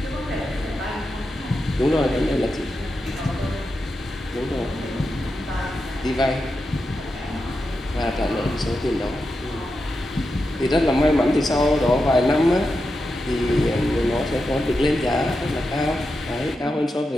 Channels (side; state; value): both; normal; correlation 0.88